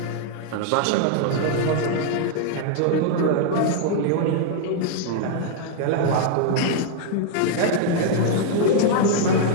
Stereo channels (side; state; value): both; different; correlation -0.01